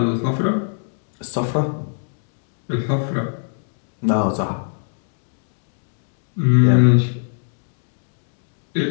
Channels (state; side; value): silent; right; digital silence